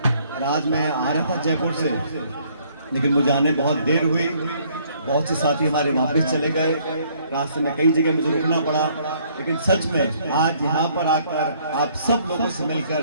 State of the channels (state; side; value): inverted; both; correlation -0.64